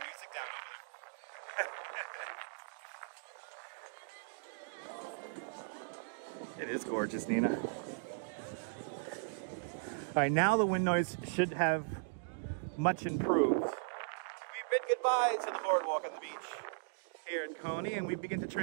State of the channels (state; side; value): silent; left; digital silence